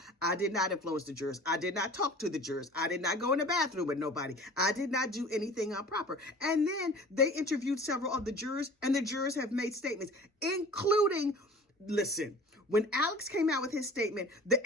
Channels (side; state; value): both; normal; correlation 0.43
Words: I did not influence the jurors. I did not talk to the jurors. I did not go in the bathroom with nobody. I did not do anything improper. And then they interviewed several of the jurors, and the jurors have made statements, including, listen, when Alex came out with his statement, the